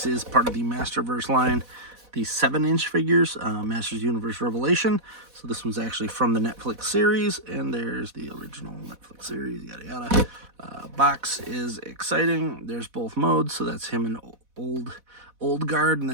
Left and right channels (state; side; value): late; left; 4.1 ms